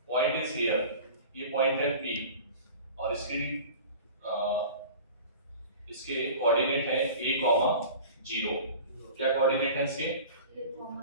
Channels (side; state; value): both; inverted; correlation -0.39